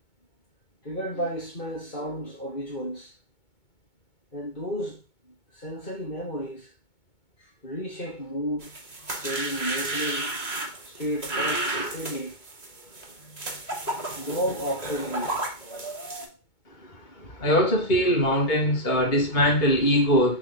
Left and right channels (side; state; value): right; late; 2.2 ms